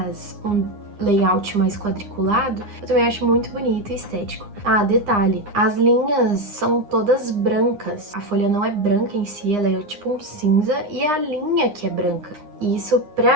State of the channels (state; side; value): late; left; 9.8 ms